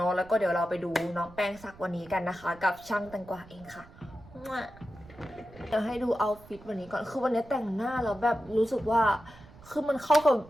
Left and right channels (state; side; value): noise; right; rumble, 21 dB below the sound